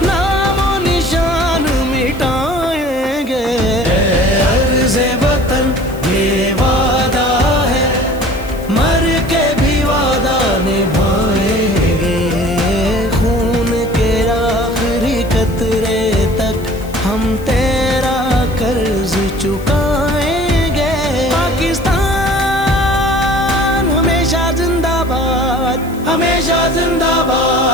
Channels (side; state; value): left; noise; hiss, 21 dB below the sound